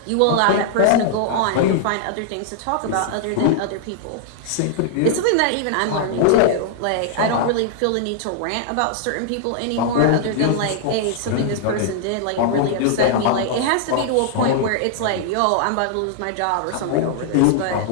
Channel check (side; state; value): both; different; correlation -0.01